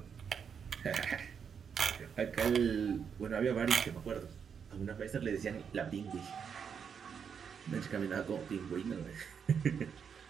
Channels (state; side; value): quieter; left; 7.0 dB